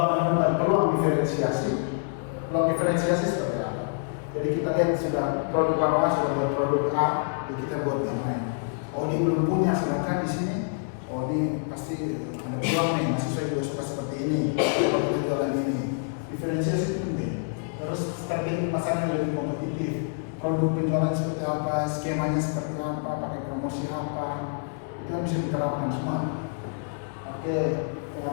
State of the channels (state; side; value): silent; right; digital silence